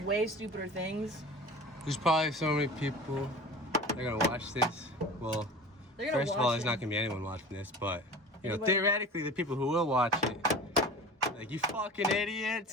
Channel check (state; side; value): normal; both; correlation 0.38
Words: way stupider things. There's probably so many people that are gonna watch this. Well, They're gonna first of watch all, there's it. not gonna be anyone watching this, but you know, Anybody- theoretically, the people who will watch it, like you fucking